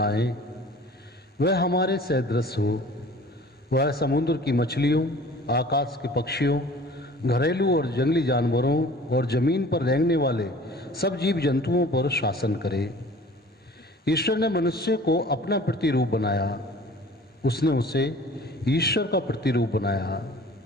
वह हमारे सदृश हो। वह समुद्र की मछलियों, आकाश के पक्षियों, घरेलू और जंगली जानवरों और जमीन पर रेंगने वाले सब जीव जंतुओं पर शासन करे। ईश्वर ने मनुष्य को अपना प्रतिरूप बनाया, उसने उसे ईश्वर का प्रतिरूप बनाया।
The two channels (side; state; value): both; normal; correlation 0.46